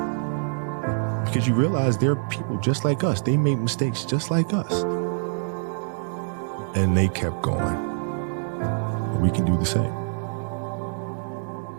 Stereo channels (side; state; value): left; silent; digital silence